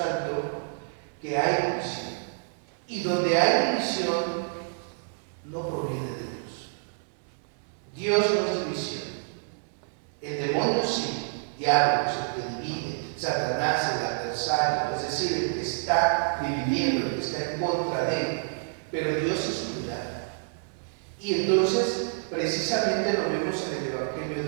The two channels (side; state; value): left; silent; digital silence